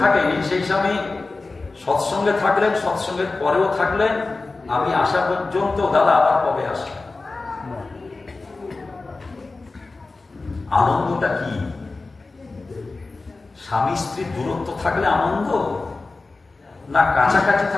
থাকেনি সেই স্বামী সৎসঙ্গে থাকলেন, সৎসঙ্গের পরেও থাকলেন। আমি আসা পর্যন্ত দাদা আবার কবে আসবে। আনন্দটা কি? স্বামী স্ত্রী দূরত্ব থাকলে আনন্দ, না কাছাকাছি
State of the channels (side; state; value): right; quieter; 3.6 dB